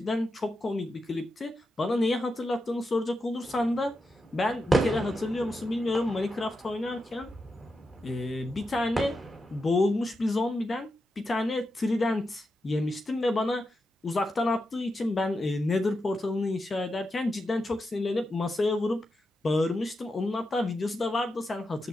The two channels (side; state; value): both; normal; correlation 0.88